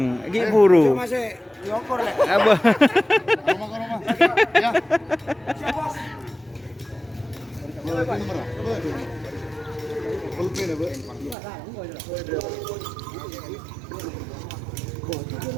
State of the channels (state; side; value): drops out; left; at 11.4 s